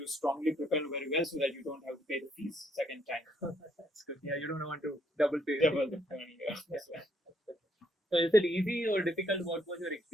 strongly prepare very well so that you don't have to pay the fees second time. That's good. Yeah, you don't want to double pay. Double the money. Yeah. So is it easy or difficult? What was your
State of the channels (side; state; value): both; normal; correlation 0.71